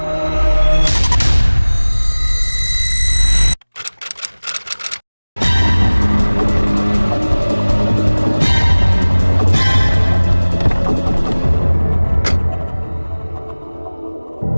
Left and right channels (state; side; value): inverted; both; correlation -1.00